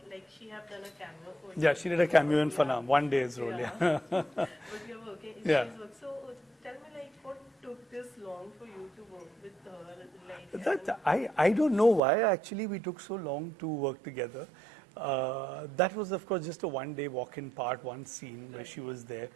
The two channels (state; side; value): drops out; left; at 12.0 s